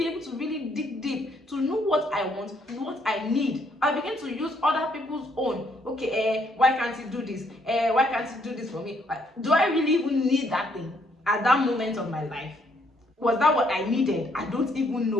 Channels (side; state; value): both; normal; correlation 0.70